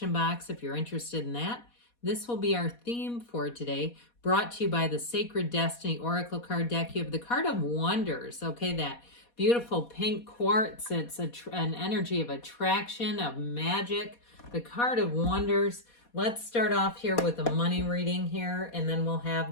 box if you're interested in that. This will be our theme for today, brought to you by the Sacred Destiny Oracle card deck. You have the card of Wonders, okay, that beautiful pink quartz. It's an energy of attraction, of magic. The card of Wonders. Let's start off here with a money reading here, and then we'll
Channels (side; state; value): right; late; 4.2 ms